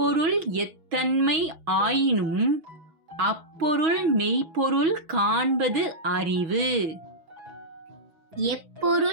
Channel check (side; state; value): left; late; 6.2 ms